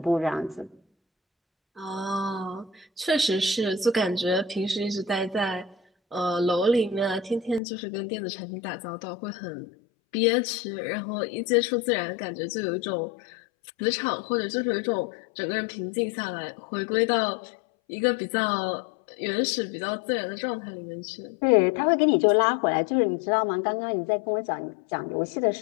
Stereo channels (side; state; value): right; drops out; at 7.6 s